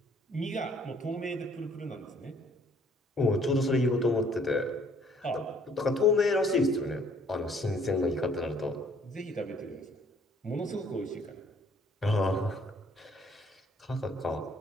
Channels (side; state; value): both; normal; correlation 0.61